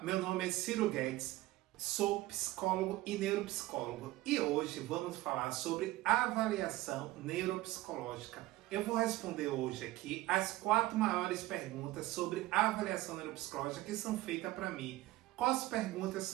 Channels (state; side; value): quieter; left; 17.7 dB